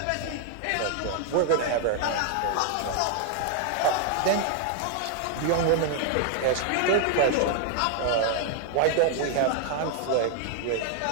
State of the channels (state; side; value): different; both; correlation 0.00